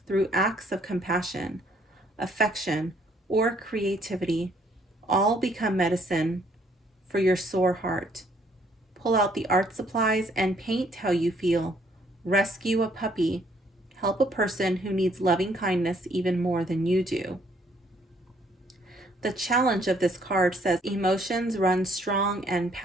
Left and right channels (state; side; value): normal; both; correlation 0.65